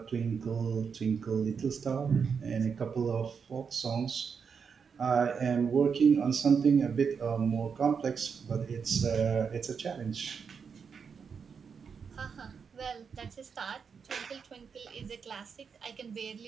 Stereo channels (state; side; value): quieter; left; 6.2 dB